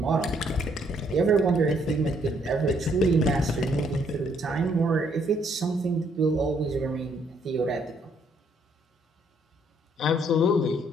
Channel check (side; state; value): both; normal; correlation 0.69